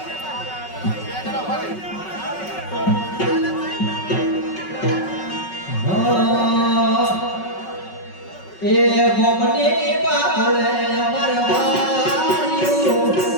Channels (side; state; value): right; late; 5.4 ms